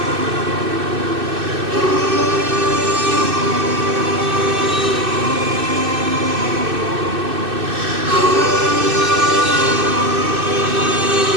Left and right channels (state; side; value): late; left; 2.6 ms